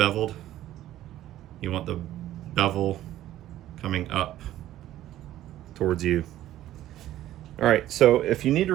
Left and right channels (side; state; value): left; quieter; 13.6 dB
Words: You want the bevel coming up towards you. All right, so if you need to